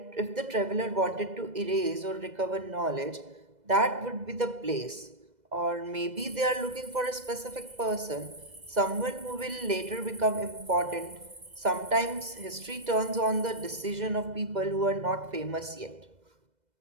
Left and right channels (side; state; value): left; late; 2.0 ms